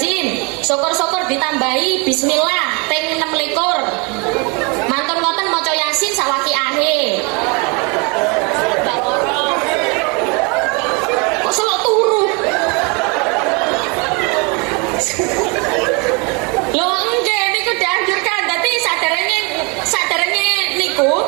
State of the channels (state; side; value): quieter; left; 31.1 dB